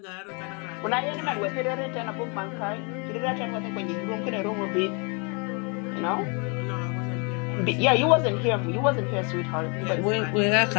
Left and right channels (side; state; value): right; quieter; 33.8 dB